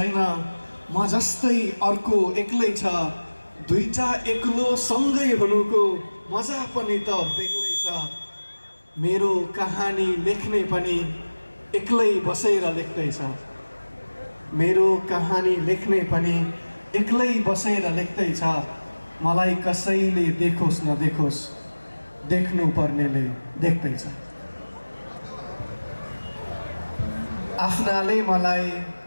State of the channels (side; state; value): both; inverted; correlation -1.00